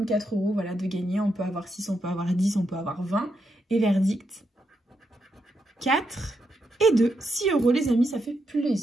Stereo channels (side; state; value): both; normal; correlation 0.82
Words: 4 €, voilà, de gagner. On peut avoir 6, on peut avoir 10, on peut avoir 20. Et verdict, 4 et 2. 6 €, les amis, ça fait